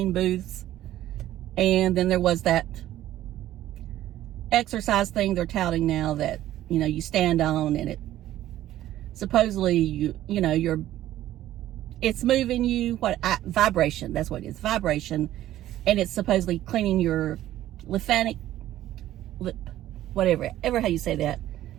booths. And then there was that exercise thing they're touting now that, you know, you stand on and it supposedly, you know, it's moving you, vibration, that's what it is, vibration. And it's supposedly cleaning your whatever how you say that,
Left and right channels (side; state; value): left; quieter; 13.6 dB